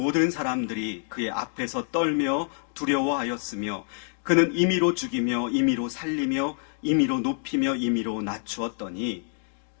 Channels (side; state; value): right; silent; digital silence